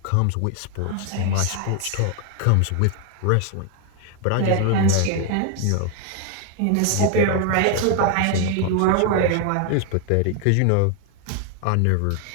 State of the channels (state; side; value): different; both; correlation 0.01